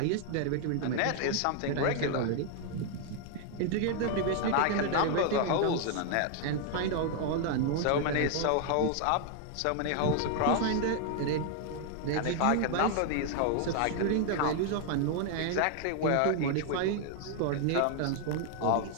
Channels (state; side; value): different; both; correlation 0.00